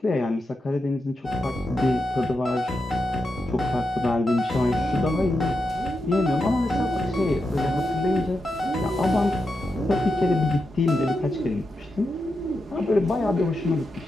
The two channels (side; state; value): both; normal; correlation 0.87